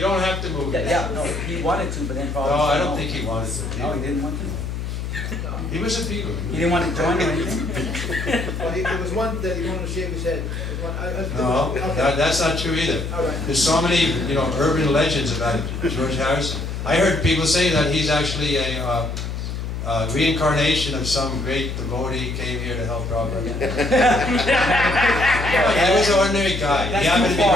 have to move. Yeah, no, he wanted to, but then probably... No, I don't think he wanted to. No, he didn't want to. He was a Beatle. He didn't want to join or anything? Well, there was one that he wanted to shave his head. No, that's not true either. There's so many, urban legends about George Harrison. I heard people say that he's actually a reincarnation of some great devotee came here to help Prabhupada. He was an ordinary guy. He happened to be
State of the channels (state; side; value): noise; left; hum, 5 dB below the sound